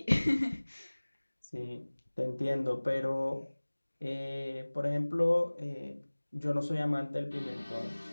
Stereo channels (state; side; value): inverted; both; correlation -1.00